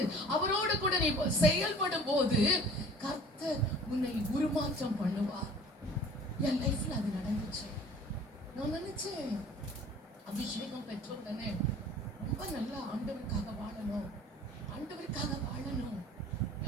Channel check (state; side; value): normal; both; correlation 0.46